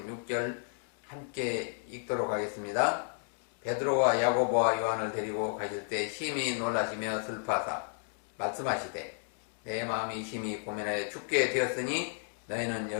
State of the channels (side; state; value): right; silent; 56 dB below the other